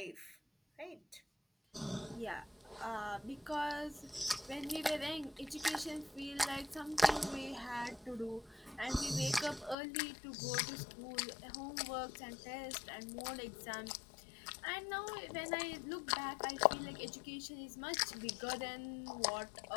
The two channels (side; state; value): right; drops out; at 9.8 s